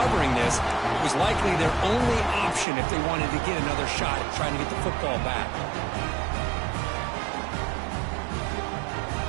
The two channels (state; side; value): drops out; left; at 2.7 s